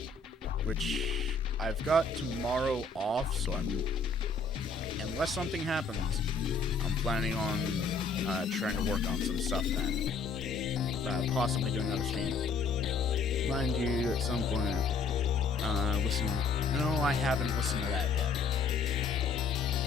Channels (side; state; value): right; quieter; 4.4 dB